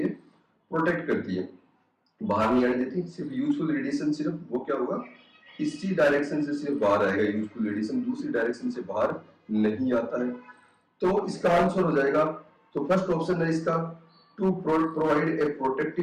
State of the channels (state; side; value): identical; both; correlation 1.00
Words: प्रोटेक्ट करती है, बाहर नहीं आने देती। सिर्फ यूजफुल रेडिएशन सिर्फ वो क्या होगा, इसी डायरेक्शन से सिर्फ बाहर आएगा यूजफुल रेडिएशन, दूसरी डायरेक्शन से बाहर नहीं आता है। तो इसका आंसर हो जाएगा, तो फर्स्ट ऑप्शन है इसका to provide a